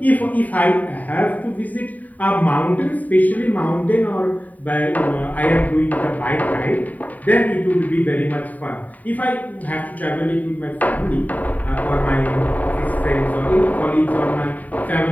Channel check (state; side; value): late; right; 0.075 ms